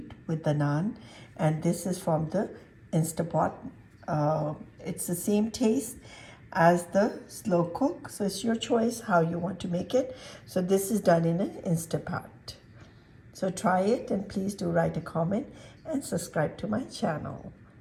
with the naan. And this is from the Instapot. It's the same taste as the slow cook, so it's your choice how you want to make it. So this is done in an Instapot. So try it, and please do write a comment and subscribe to my channel.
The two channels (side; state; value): both; identical; correlation 1.00